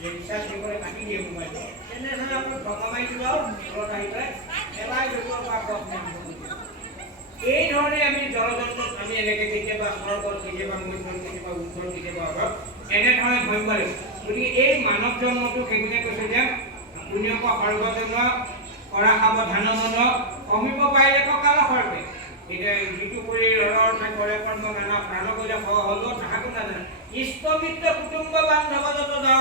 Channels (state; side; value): normal; both; correlation -0.01